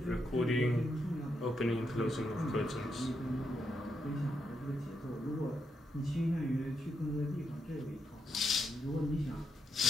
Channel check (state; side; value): normal; both; correlation 0.81